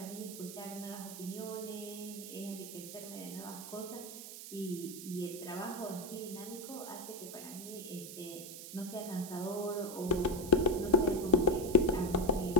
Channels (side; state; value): right; noise; hiss, 11 dB below the sound